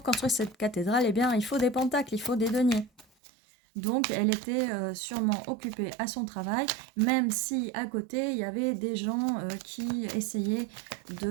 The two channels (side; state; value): left; drops out; at 3.1 s